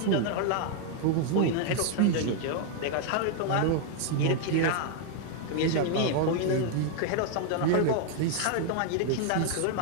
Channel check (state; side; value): different; both; correlation 0.00